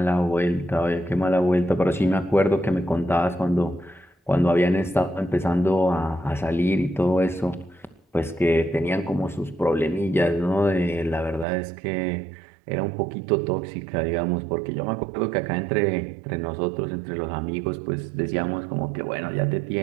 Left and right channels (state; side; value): drops out; left; at 11.5 s